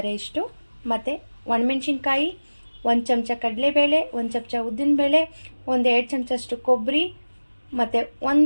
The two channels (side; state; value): both; inverted; correlation -1.00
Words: ಇಷ್ಟು, ಮತ್ತು ಒಣಮೆಣ್ಸಿನ್ಕಾಯಿ, 1 ಚಮಚ ಕಡಲೆಬೇಳೆ, 1 ಚಮಚ ಉದ್ದಿನಬೇಳೆ, 1-2 ಚಮಚಷ್ಟು ಕೊಬ್ಬರಿ, ಮತ್ತು